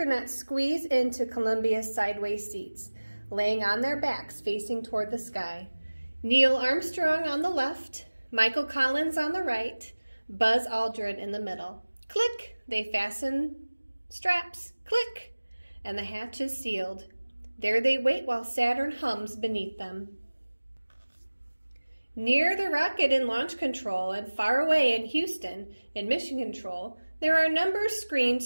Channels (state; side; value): inverted; both; correlation -1.00